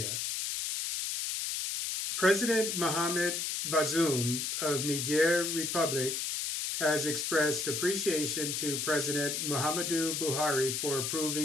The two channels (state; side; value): noise; left; hiss, 2 dB below the sound